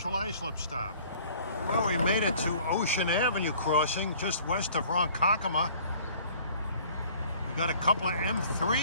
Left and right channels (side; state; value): both; inverted; correlation -0.52